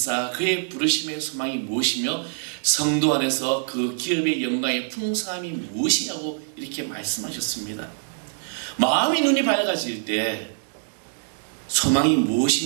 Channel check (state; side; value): silent; left; digital silence